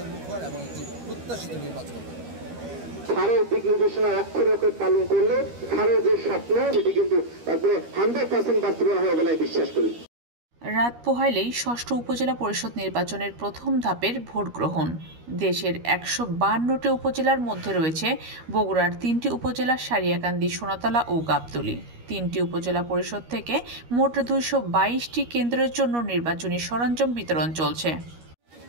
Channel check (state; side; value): late; left; 13 ms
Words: এবং একটি প্রত্যাশিত নির্বাচন হবে। স্যারের দিক নির্দেশনা অক্ষরে অক্ষরে পালন করলে স্যারের যে স্বপ্ন সেটি কিন্তু একবারে 100% বাস্তবায়ন হবে বলে বিশ্বাস করি। রাত পোহাইলেই ষষ্ঠ উপজেলা পরিষদ নির্বাচনের প্রথম ধাপের ভোট গ্রহণ। দেশের 152টি উপজেলার মধ্যে রয়েছে বগুড়ার 3টি উপজেলা সারিয়াকান্দি, সোনাতলা ও গাবতলী। 3টি উপজেলা পরিষদ থেকে মোট 222টি কেন্দ্রের জন্য নির্বাচনী সরঞ্জাম বিতরণ চলছে।